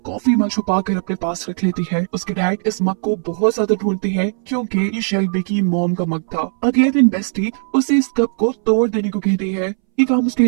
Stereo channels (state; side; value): silent; left; 65 dB below the other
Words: कॉफी मग छुपा कर अपने पास रख लेती है। उसके डैड इस मग को बहुत ज्यादा ढूंढते हैं क्योंकि ये शेल्बी की मॉम का मग था। अगले दिन बेस्टी उसे इस कप को तोड़ देने को कहती है। ये काम उसके